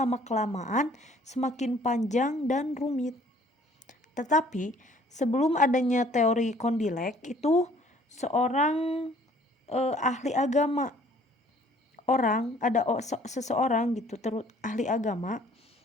semakin panjang dan rumit. Tetapi sebelum adanya teori Condillac itu seorang ahli agama, seseorang gitu ahli agama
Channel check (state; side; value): normal; both; correlation 0.57